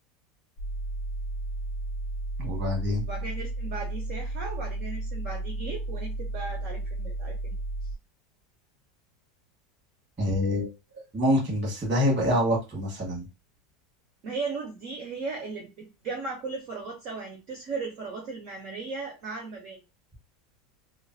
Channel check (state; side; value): normal; both; correlation 0.39